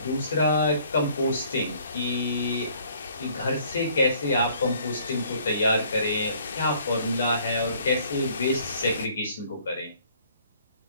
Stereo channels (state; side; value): inverted; both; correlation -0.60